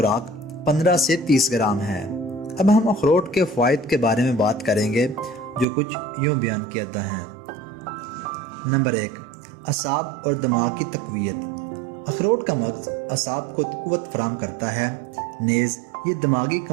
15 سے 30 گرام ہے۔ اب ہم اخروٹ کے فوائد کے بارے میں بات کریں گے جو کچھ یوں بیان کیا جاتا ہے۔ نمبر 1، اعصاب اور دماغ کی تقویت۔ اخروٹ کا مغز اعصاب کو قوت فراہم کرتا ہے، نیز یہ دماغی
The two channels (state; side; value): drops out; left; at 5.7 s